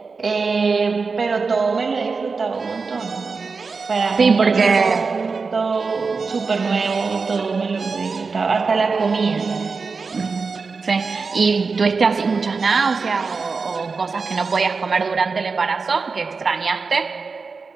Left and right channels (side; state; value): left; quieter; 4.6 dB